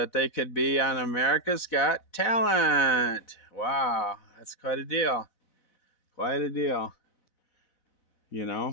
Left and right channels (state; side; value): late; right; 4.0 ms